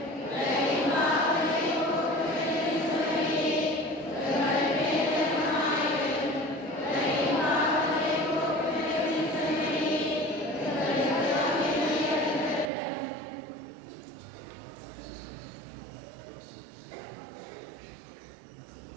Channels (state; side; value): drops out; left; at 12.7 s